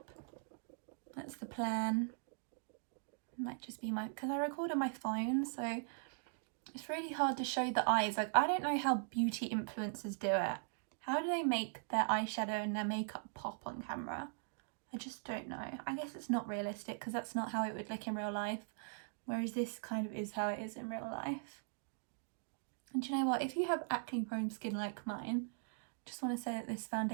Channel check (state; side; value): silent; left; digital silence